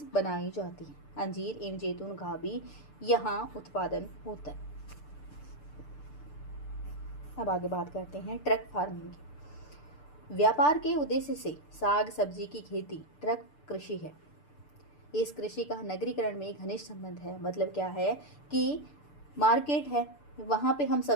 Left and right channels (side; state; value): right; late; 6.8 ms